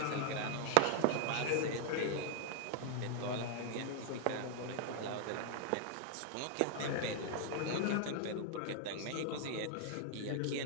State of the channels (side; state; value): both; different; correlation 0.00